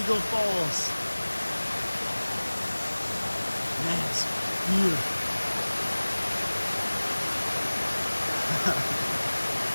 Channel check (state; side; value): inverted; both; correlation -1.00